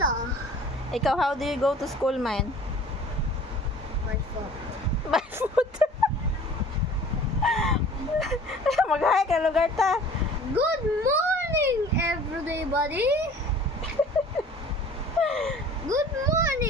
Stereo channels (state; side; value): normal; both; correlation 0.47